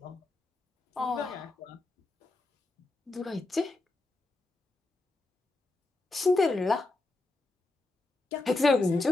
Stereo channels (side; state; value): right; quieter; 3.0 dB